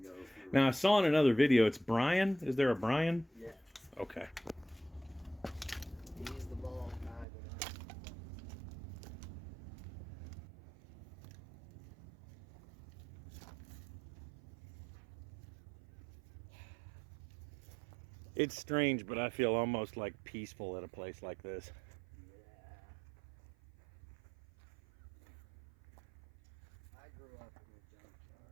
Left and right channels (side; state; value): left; drops out; at 7.2 s